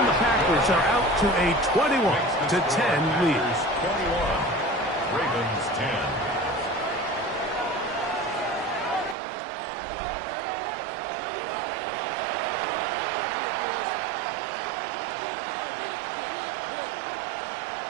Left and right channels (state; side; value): drops out; left; at 9.2 s